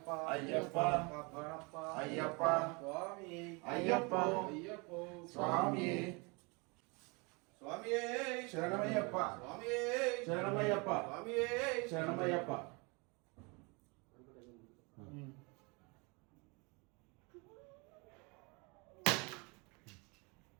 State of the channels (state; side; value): quieter; left; 29.5 dB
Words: ಅಯ್ಯಪ್ಪ ಕಬ್ಬಣಪ್ಪ ಅಯ್ಯಪ್ಪ ಸ್ವಾಮಿಯೇ ಅಯ್ಯಪ್ಪ ಅಯ್ಯಪ್ಪ ಸ್ವಾಮಿಯೇ ಸ್ವಾಮಿಯೇ ಶರಣಮಯ್ಯಪ್ಪ ಸ್ವಾಮಿಯೇ ಶರಣಮಯ್ಯಪ್ಪ ಸ್ವಾಮಿಯೇ ಶರಣಮಯ್ಯಪ್ಪ.